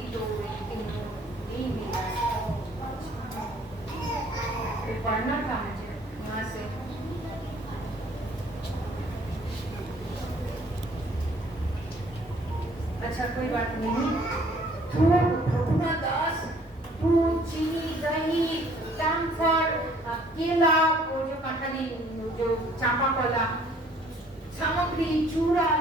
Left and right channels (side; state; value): both; normal; correlation 0.59